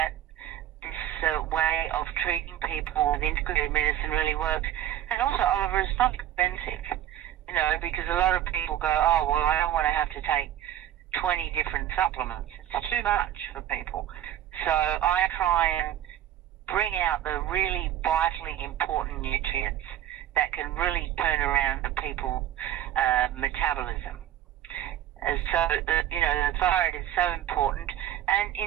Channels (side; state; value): left; quieter; 11.9 dB